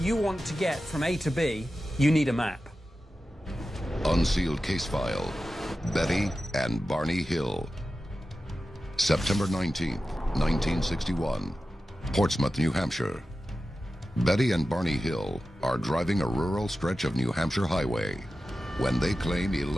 you want to get from A to B, you need a map. Unsealed case file, Betty and Barney Hill. September 19th, 1961, Portsmouth, New Hampshire. Betty and Barney Hill are driving a rural stretch of New Hampshire highway when they claim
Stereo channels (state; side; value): normal; both; correlation 0.93